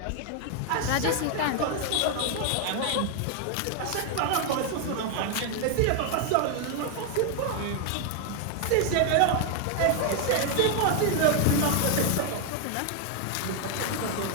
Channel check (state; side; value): different; both; correlation 0.00